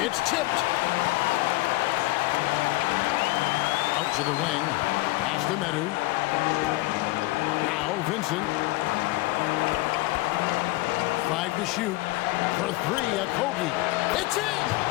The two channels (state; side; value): quieter; right; 20.0 dB